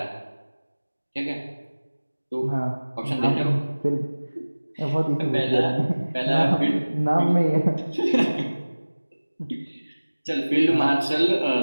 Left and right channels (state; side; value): inverted; both; correlation -1.00